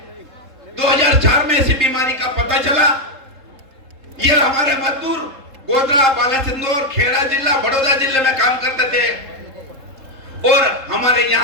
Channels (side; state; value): left; late; 3.7 ms